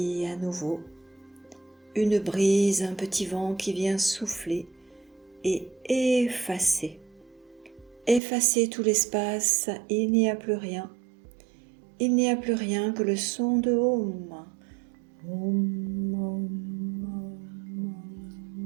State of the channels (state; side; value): drops out; left; at 8.2 s